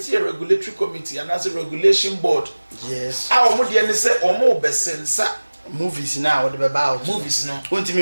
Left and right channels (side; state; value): both; inverted; correlation -1.00